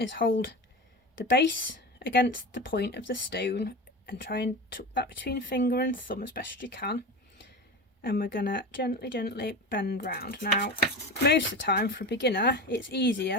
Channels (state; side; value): normal; both; correlation 0.27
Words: hold the base against the point of the stone and try and tuck that between finger and thumb as best you can, and we're going to gently bend round. Now most of the time for a beginner it's